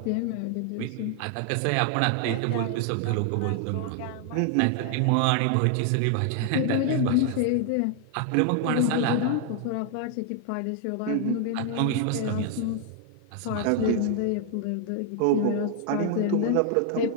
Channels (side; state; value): both; different; correlation 0.00